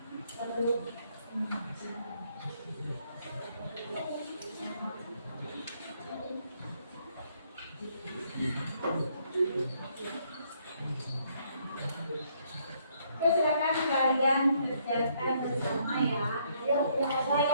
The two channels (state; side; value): inverted; both; correlation -0.69